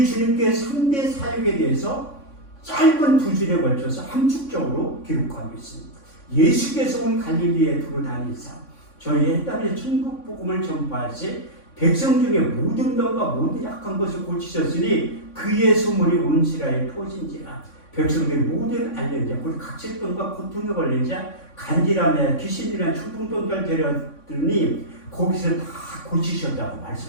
주님께 3대 사역에 대해서 짧은 두 줄에 걸쳐서 함축적으로 기록하고 있습니다. 예수께서 온 갈릴리에 두루 다니사 저희 해담의 천국 복음을 전파하시 백성 중에 모든 병과 모든 약한 것을 고치셨으니 그의 소문이 온 지라에 퍼진지라. 백성들이 모든 알린 자, 곧 각질병과 고통에 걸린 자, 간질함에 귀신이란 충동병을 데려들니 거기서 다 고치셨다고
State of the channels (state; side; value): late; right; 3.6 ms